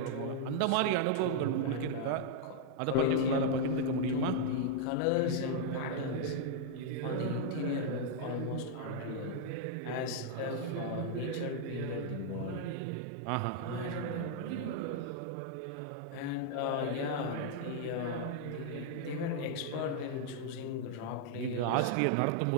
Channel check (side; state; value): both; different; correlation -0.01